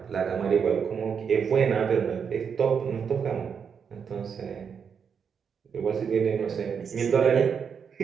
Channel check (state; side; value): quieter; left; 6.7 dB